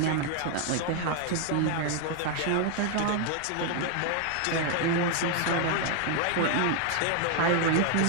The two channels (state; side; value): different; both; correlation 0.00